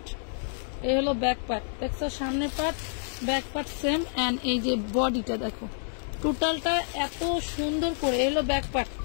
এই হলো ব্যাক পার্ট, দেখছো সামনে part back part same, and এই যে বডিটা দেখো টোটালটা এত সুন্দর করে। এই হলো ব্যাক পার্ট,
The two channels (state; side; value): silent; right; 59 dB below the other